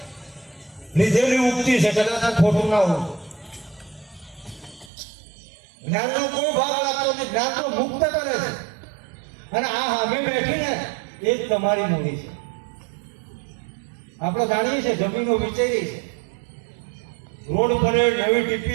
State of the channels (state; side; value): drops out; left; at 4.9 s